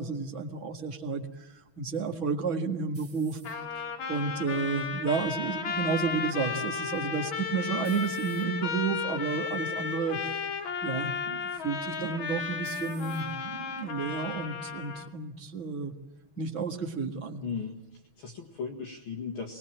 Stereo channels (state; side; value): late; right; 6.2 ms